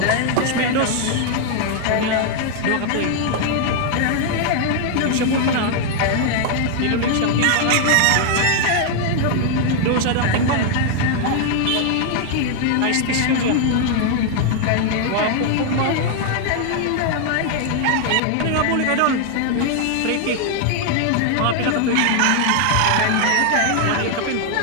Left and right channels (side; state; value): both; different; correlation 0.00